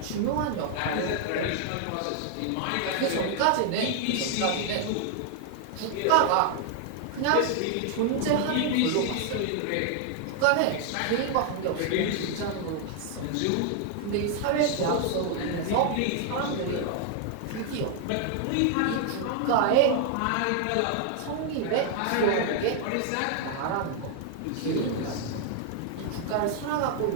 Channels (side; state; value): both; different; correlation 0.00